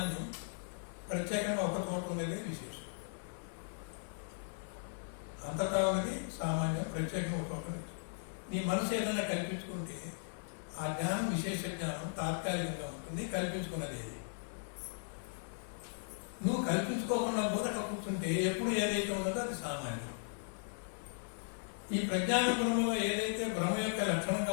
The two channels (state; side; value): silent; right; digital silence